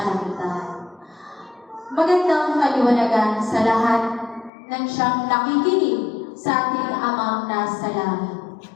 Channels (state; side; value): drops out; right; at 4.5 s